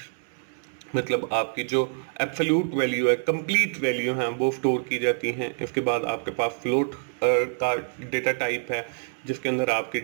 मतलब आपकी जो एब्सोल्यूट वैल्यू है, कंप्लीट वैल्यू है, वो स्टोर की जाती हैं। इसके बाद आपके पास फ्लोट का डेटा टाइप है जिसके अंदर आपके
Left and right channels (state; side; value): silent; left; 61 dB below the other